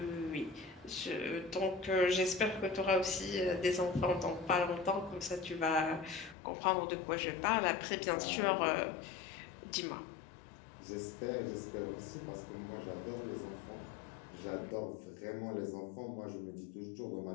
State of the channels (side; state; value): right; drops out; at 6.4 s